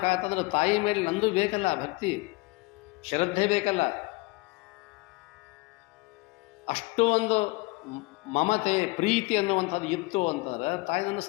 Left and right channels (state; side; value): quieter; right; 24.0 dB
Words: ತಾಯಿ ಮೇಲೆ ನಂದು ಬೇಕಲ್ಲ, ಭಕ್ತಿ ಶ್ರದ್ಧೆ ಬೇಕಲ್ಲ. ಅಷ್ಟು ಒಂದು ಮಮತೆ ಪ್ರೀತಿ ಅನ್ನುವಂಥದ್ದು ಇತ್ತು ಅಂತಂದ್ರೆ ತಾಯಿ